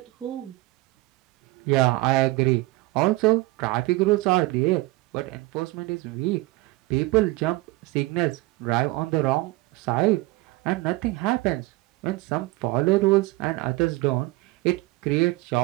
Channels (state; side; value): quieter; left; 20.9 dB